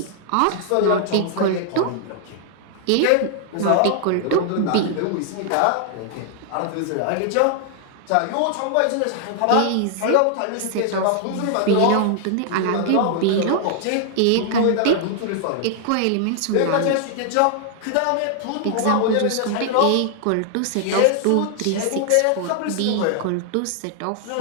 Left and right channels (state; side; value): different; both; correlation 0.00